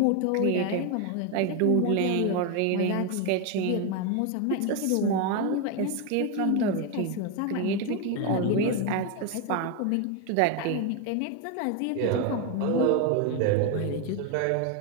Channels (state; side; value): different; both; correlation 0.02